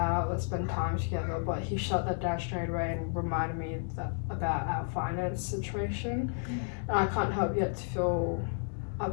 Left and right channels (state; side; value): silent; right; 56 dB below the other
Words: let's spend time together, but he shut that down straight away and reminded me about our finance situation. And I can't help yet to feel